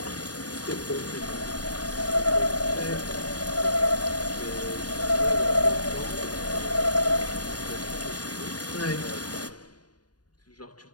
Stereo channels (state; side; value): late; right; 0.69 ms